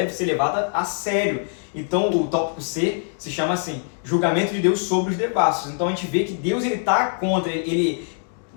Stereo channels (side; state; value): right; silent; 63 dB below the other